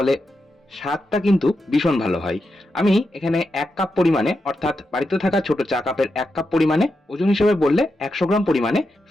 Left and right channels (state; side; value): normal; both; correlation 0.87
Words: স্বাদটা কিন্তু ভীষণ ভালো হয়। আমি এখানে ১ কাপ পরিমাণে অর্থাৎ বাড়িতে থাকা ছোট চা কাপের ১ কাপ পরিমাণে, ওজন হিসেবে বললে ১০০ গ্রাম পরিমাণে